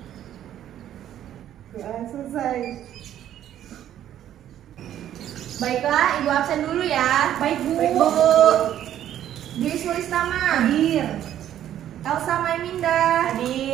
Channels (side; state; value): left; quieter; 11.2 dB